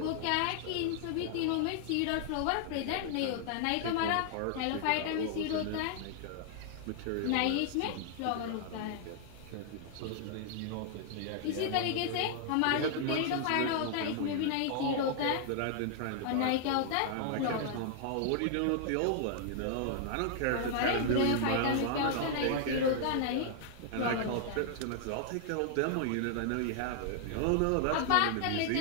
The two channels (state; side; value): different; both; correlation -0.01